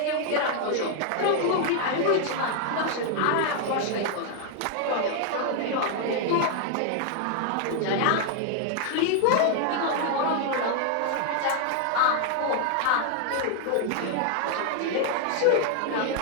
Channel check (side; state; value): both; different; correlation 0.00